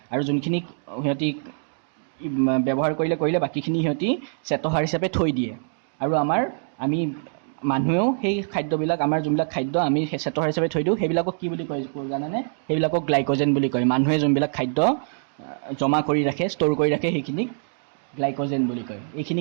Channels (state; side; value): silent; left; digital silence